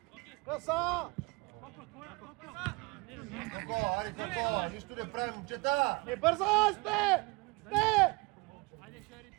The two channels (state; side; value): quieter; left; 26.5 dB